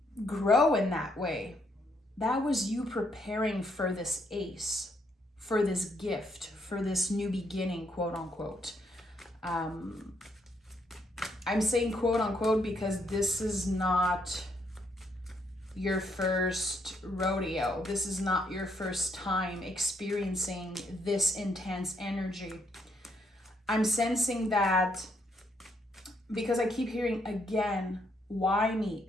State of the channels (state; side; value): normal; both; correlation 0.73